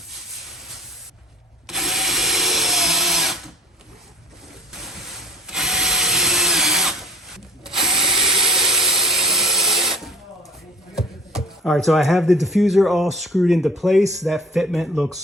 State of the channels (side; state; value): both; normal; correlation 0.47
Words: All right, so I have the diffuser all screwed into place. That fitment looks